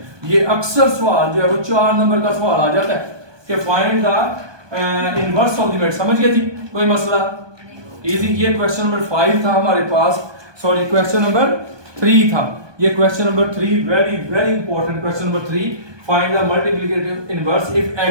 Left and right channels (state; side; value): late; left; 1.2 ms